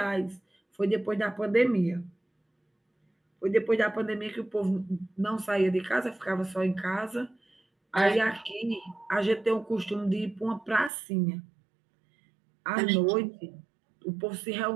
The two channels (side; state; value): left; drops out; at 10.9 s